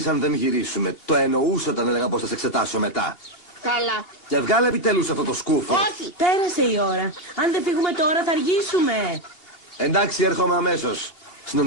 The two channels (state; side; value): late; right; 2.8 ms